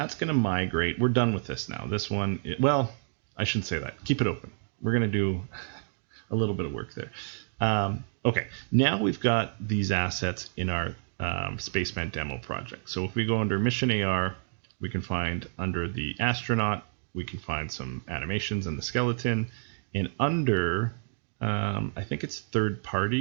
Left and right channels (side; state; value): left; silent; digital silence